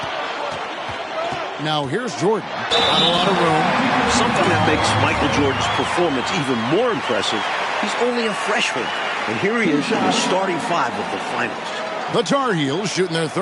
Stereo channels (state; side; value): identical; both; correlation 1.00